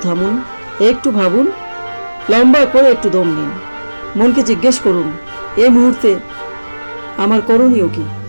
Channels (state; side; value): inverted; both; correlation -1.00